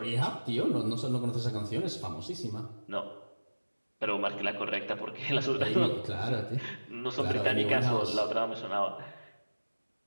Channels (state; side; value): inverted; both; correlation -1.00